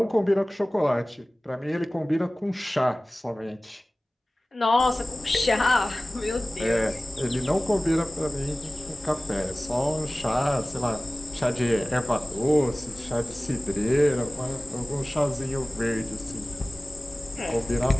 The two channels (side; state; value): both; normal; correlation 0.98